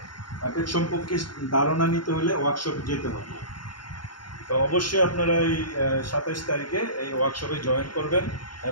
অ্যাপেক্স সম্পর্কে ধারণা নিতে হলে ওয়ার্কশপে যেতে হবে। তো অবশ্যই আপনারা এই 27 তারিখে এই ওয়ার্কশপে জয়েন করবেন।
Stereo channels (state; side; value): late; right; 0.72 ms